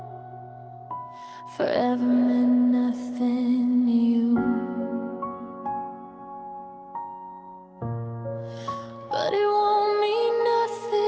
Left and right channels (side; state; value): both; identical; correlation 1.00